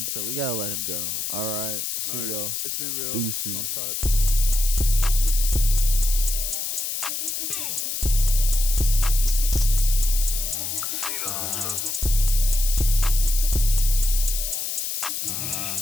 so we gotta let him go. All right. See All right. y'all. It's been real. Deuces. Swamp Talk.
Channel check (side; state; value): left; noise; hiss, 3 dB below the sound